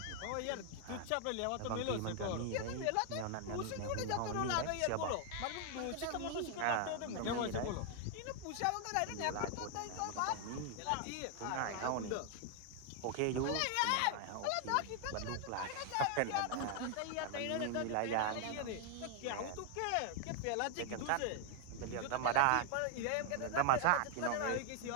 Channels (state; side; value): different; both; correlation 0.00